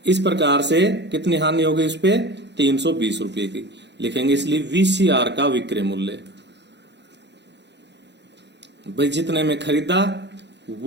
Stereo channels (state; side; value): late; left; 0.51 ms